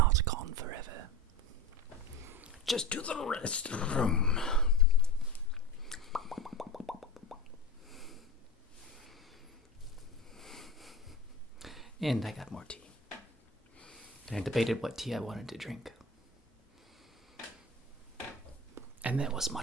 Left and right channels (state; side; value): normal; both; correlation 0.27